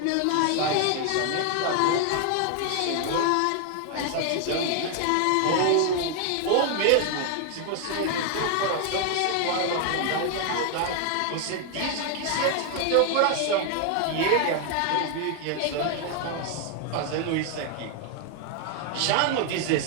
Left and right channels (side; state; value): both; different; correlation 0.00